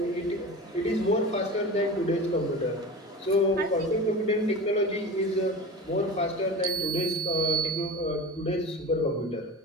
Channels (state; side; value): normal; both; correlation 0.31